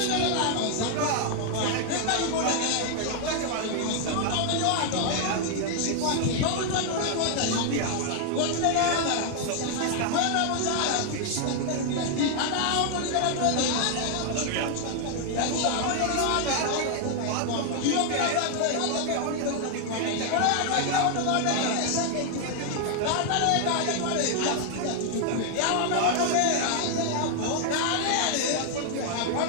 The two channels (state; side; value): different; both; correlation 0.00